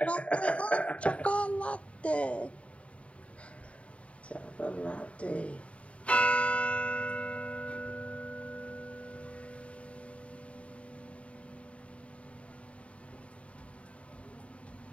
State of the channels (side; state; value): right; late; 0.063 ms